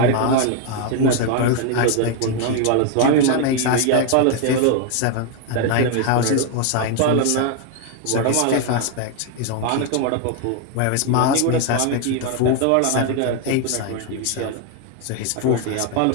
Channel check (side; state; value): both; different; correlation 0.01